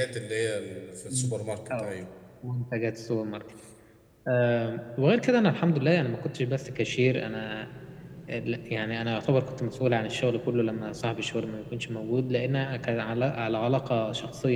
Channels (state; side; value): identical; both; correlation 1.00